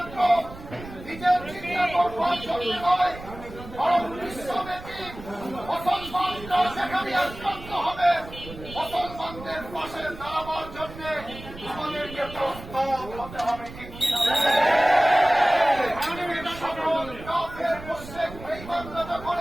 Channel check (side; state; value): right; noise; rumble, 14 dB below the sound